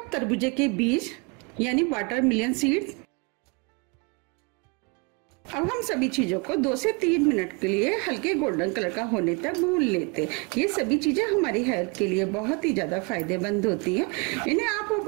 तरबूजे के बीज यानी वाटरमेलन सीड। अब हम सभी चीजों को 2 से 3 मिनट के लिए हल्के गोल्डन कलर का होने तक भून लेते हैं। ये सभी चीजें हमारी हेल्थ के लिए बहुत ही ज्यादा फायदेमंद होती हैं। इन्हें आप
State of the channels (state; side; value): quieter; left; 31.0 dB